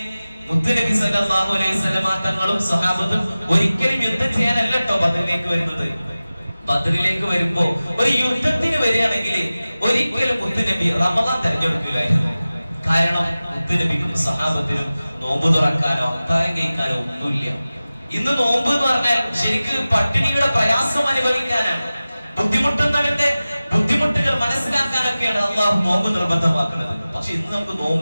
മുത്തുനബി സല്ലല്ലാഹു അലൈഹി വസല്ലമ തങ്ങളും സ്വഹാബത്തും ഒരിക്കലും യുദ്ധം ചെയ്യാനല്ല കേട്ടോ ബദറിലേക്ക് വരുന്നത്. ബദറിലേക്ക് വരുമ്പോ ഒരു യുദ്ധത്തിന് വരികയാണെങ്കിൽ ഒരിക്കലും മുത്തുനബി റമദാൻ തെരഞ്ഞെടുക്കില്ലായിരുന്നു. കാരണം മുത്തുനബിക്കും സ്വഹാബത്തിനും നോമ്പ് തുറക്കാനോ അത്താഴം കഴിക്കാനോ ഒന്നുമില്ല. ഇന്ന് നോമ്പ് എന്ന് പറഞ്ഞാൽ ശരിക്ക് പട്ടിണിയുടെ പ്രയാസം അനുഭവിക്കാനാണ്. ബുദ്ധിമുട്ടുന്നവന്റെ ബുദ്ധിമുട്ടുകൾ മനസ്സിലാക്കാനൊക്കെയാണ് അള്ളാഹു നോമ്പ് നിർബന്ധമാക്കുന്നത്. പക്ഷെ ഇന്ന് നമുക്ക്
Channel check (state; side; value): inverted; both; correlation -0.97